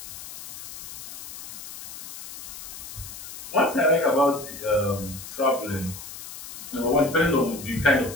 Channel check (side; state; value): left; noise; hiss, 11 dB below the sound